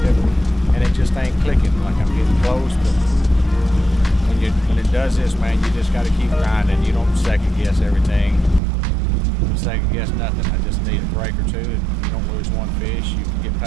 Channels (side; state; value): left; drops out; at 8.6 s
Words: and it just ain't clicking. Like I'm getting close, but when it does this, man, you just gotta keep grinding. You don't second guess everything. You don't second guess nothing. I just need a break or two, and you don't lose one fish, you can get